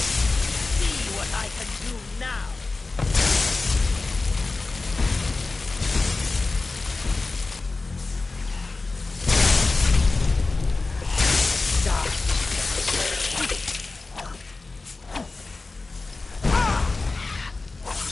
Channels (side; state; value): right; quieter; 3.6 dB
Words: see what I can do now.